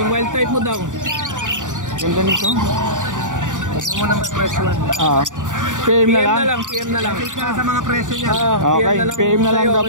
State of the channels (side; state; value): left; late; 0.87 ms